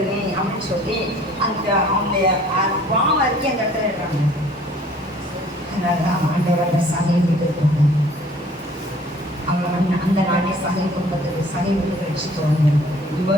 அப்படின்னு சொல்லி அந்த அவங்களுடைய பாவம் அறிக்கை அந்த இடத்துல இருக்காங்க. அதனாலதான் ஆண்டவர்கள் சகை விட்டு இருக்காங்க. அவங்க அந்த நாளே சகை குடும்பத்துக்கு சகை விட்டு ரட்சித்தவங்க.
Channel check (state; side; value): normal; both; correlation 0.54